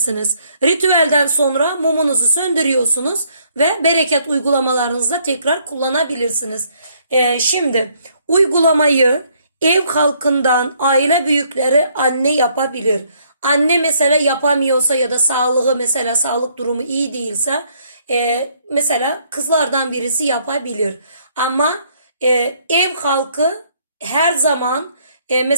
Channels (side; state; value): both; inverted; correlation -0.67